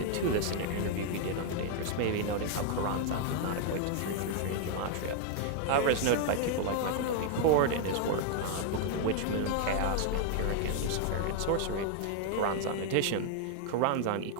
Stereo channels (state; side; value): different; both; correlation 0.00